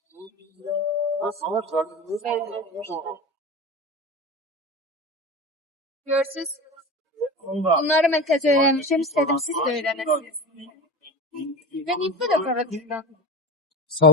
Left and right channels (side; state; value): both; normal; correlation 0.28